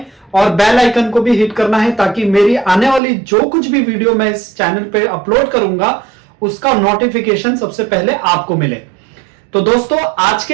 और बेल आइकन को भी हिट करना है, ताकि मेरी आने वाली जो कुछ भी वीडियो मैं इस चैनल पे अपलोड करूंगा उसका नोटिफिकेशन सबसे पहले आपको मिले। तो दोस्तों आज के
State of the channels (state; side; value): drops out; left; at 3.0 s